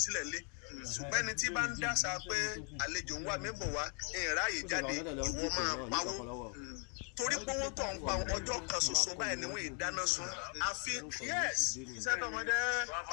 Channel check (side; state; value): right; quieter; 37.8 dB